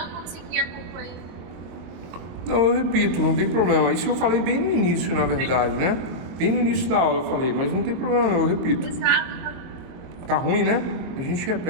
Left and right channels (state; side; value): late; left; 23 ms